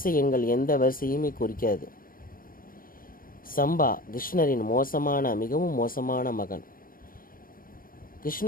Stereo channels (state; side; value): late; right; 0.41 ms